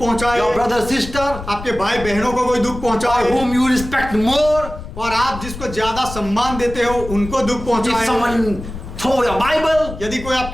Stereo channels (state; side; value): noise; left; rumble, 11 dB below the sound